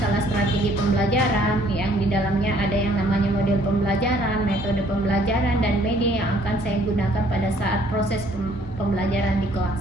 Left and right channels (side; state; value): both; normal; correlation 0.61